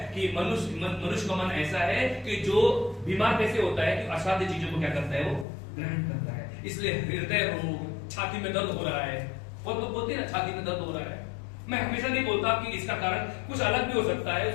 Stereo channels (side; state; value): right; drops out; at 5.5 s